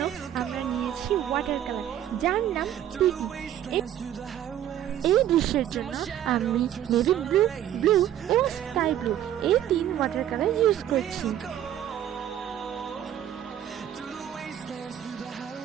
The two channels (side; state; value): left; quieter; 11.2 dB